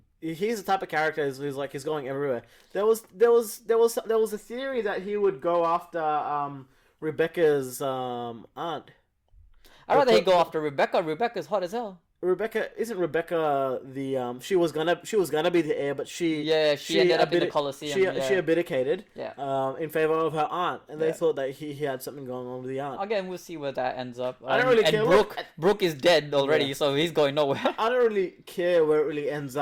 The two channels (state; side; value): identical; both; correlation 1.00